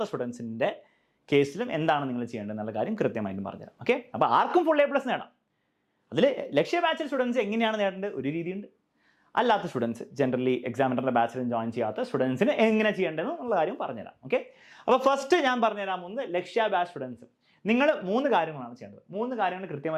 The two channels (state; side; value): identical; both; correlation 1.00